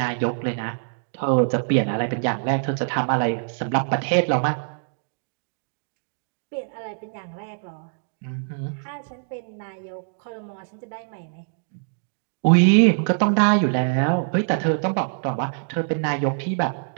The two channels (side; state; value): left; silent; digital silence